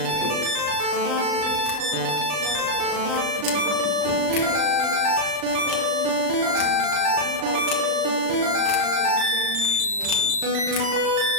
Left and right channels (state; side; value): late; left; 39 ms